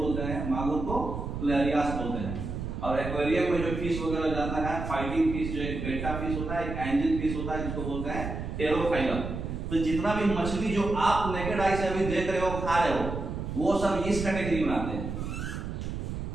हैं, मागुर को लेरियास बोलते हैं। और एक्वेरियम में जो फिश वगैरह जाता है, फाइटिंग फिश जो एक बेटा फिश होता है, एक एंजल फिश होता है, जिसको बोलते हैं टेरोफाइलम। तो जितना भी मछली जो आप नेकेड आई से अभी देख रहे हो, खा रहे हो, वो सब इस कैटेगरी में आते हैं।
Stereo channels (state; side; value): noise; right; rumble, 5 dB below the sound